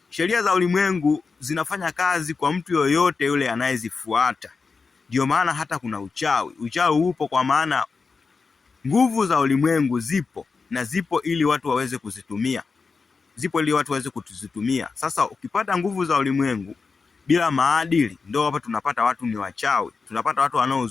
Sheria za ulimwengu zinafanya kazi kwa mtu yoyote yule anayezifuata. Ndio maana hata kuna uchawi upo, kwa maana nguvu za ulimwengu zipo ili watu waweze kuzitumia. Sasa ukipata nguvu za ulimwengu bila maadili, ndio hapa tunapata watu ni wachawi, tunapata watu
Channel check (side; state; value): right; quieter; 4.7 dB